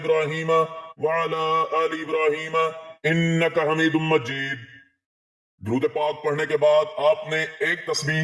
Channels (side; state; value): both; identical; correlation 1.00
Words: وعلی آل ابراہیم انک حمید مجید۔ درود پاک پڑھنے کے بعد آپ نے ایک تسبیح